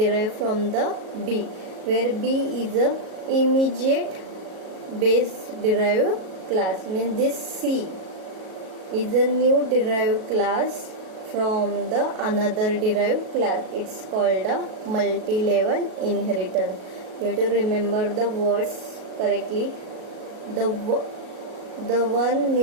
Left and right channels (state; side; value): late; left; 37 ms